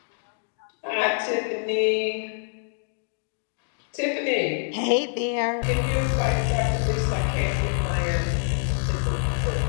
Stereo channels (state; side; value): silent; right; 60 dB below the other